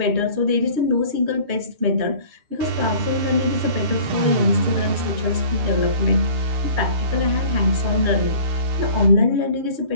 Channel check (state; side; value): late; left; 6.6 ms